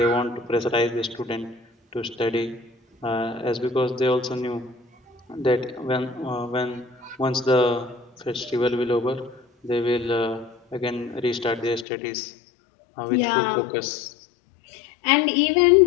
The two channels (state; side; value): drops out; right; at 11.9 s